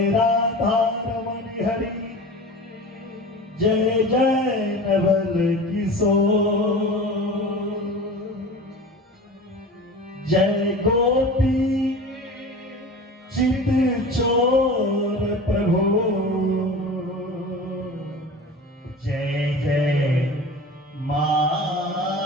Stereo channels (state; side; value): normal; both; correlation 0.35